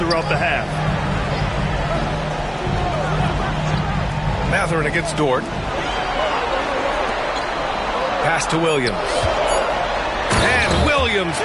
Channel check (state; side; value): identical; both; correlation 1.00